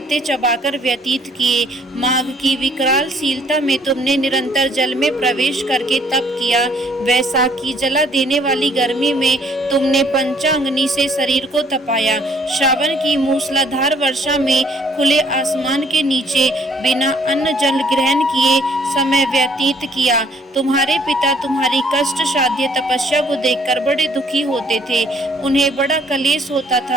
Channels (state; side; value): normal; both; correlation 0.62